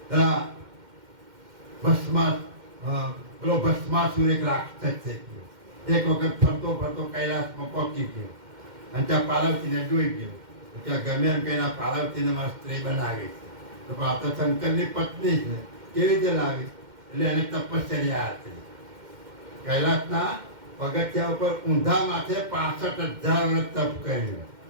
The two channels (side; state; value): left; late; 2.1 ms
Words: પેલો ભસ્માસુર એક રાક્ષસ થઈ ગયો, એક વખત ફરતો ફરતો કૈલાસમાં પહોંચી ગયો અને ત્યાં પાર્વતીને જોઈ ગયો. ત્યાં ગમે એમ કહીને પાર્વતીને મારી સ્ત્રી બનાવી છે. તો પણ આ તો શંકરની પત્ની છે, કેવી રીતે લાવી? એટલે એને તપશ્ચર્યા હતી. કૈલાસના પગથિયા ઉપર ઊંધા માથે 65,000 વર્ષ તપ કર્યું.